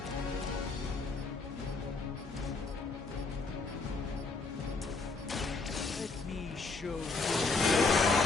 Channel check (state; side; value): quieter; right; 4.0 dB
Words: Let me show you.